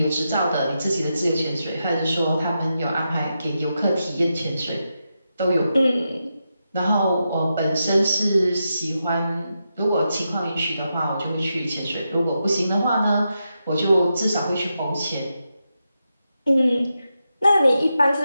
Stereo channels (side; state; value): both; inverted; correlation -0.87